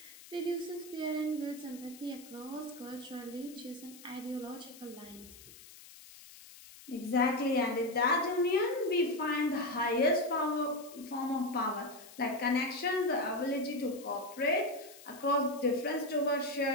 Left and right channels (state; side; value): noise; left; hiss, 19 dB below the sound